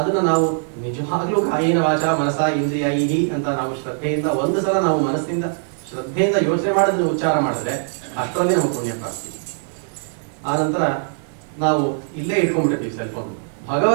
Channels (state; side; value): silent; left; digital silence